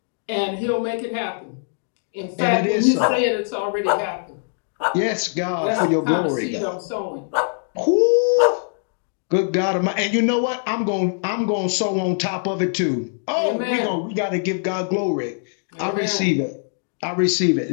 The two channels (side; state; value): right; silent; 64 dB below the other